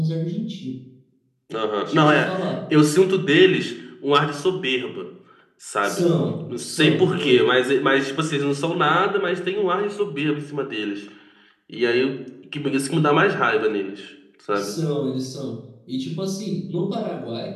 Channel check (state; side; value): identical; both; correlation 1.00